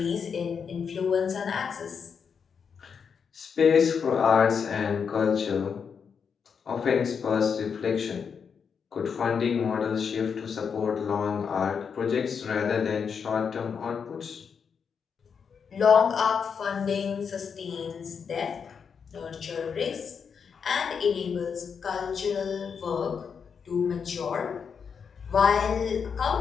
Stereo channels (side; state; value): right; quieter; 6.5 dB